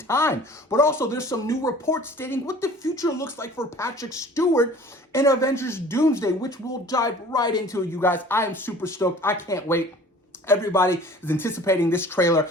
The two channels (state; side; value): normal; both; correlation 0.47